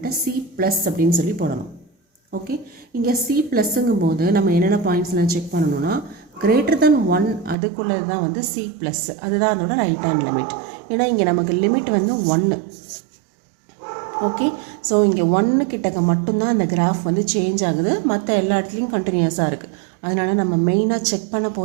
சி ப்ளஸ் அப்படின்னு சொல்லி போடணும். ஓகே, இங்கே சி ப்ளஸ்ஸுங்கும் போது நம்ம என்னென்ன பாயிண்ட்ஸ்லாம் செக் பண்ணணும்னா கிரேட்டர் தென் 1 அதுக்குள்ளே தான் வந்து சி ப்ளஸ், அதுதான் அதோட ரைட் ஹேண்ட் லிமிட். ஏன்னா இங்கே நமக்கு லிமிட் வந்து 1. ஓகே, ஸோ இங்கே 1 கிட்டக்க மட்டும்தான் இந்த கிராஃப் வந்து சேஞ்ச் ஆகுது, மற்ற எல்லா இடத்துலையும் கண்டினியூஸாக இருக்குது. அதனால் நம்ம மெயினாக செக் பண்ண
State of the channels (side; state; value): left; drops out; at 7.6 s